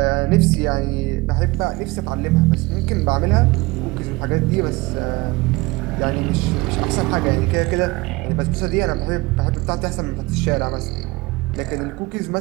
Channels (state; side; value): quieter; left; 22.9 dB